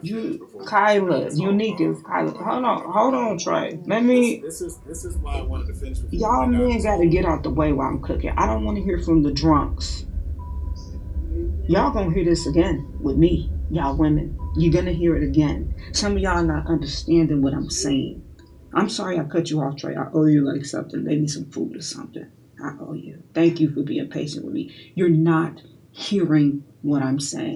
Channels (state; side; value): identical; both; correlation 1.00